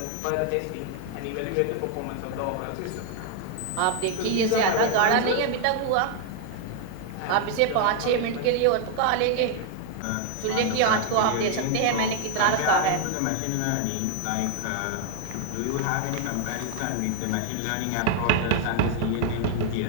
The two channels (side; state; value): both; different; correlation 0.00